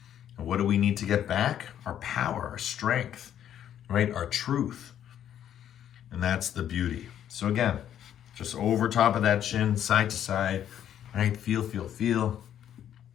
And what do we need to get back? Our power, our strength, right? Our truth. And that's the beauty. So again, just over top of that chin, side to side, right? Feel, feel, feel.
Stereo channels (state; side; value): quieter; right; 10.3 dB